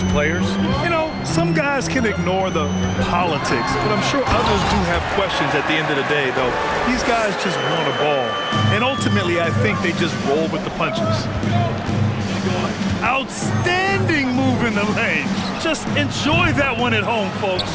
players? You know, some guys can ignore the politics, but I'm sure others do have questions at the end of the day, though. These guys just want a ball. And ultimately, I think they just roll with the punches. Outstanding move in the lane. Just enjoy that one at home,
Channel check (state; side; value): identical; both; correlation 1.00